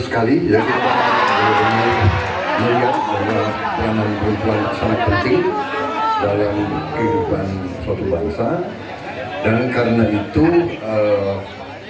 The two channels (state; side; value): identical; both; correlation 1.00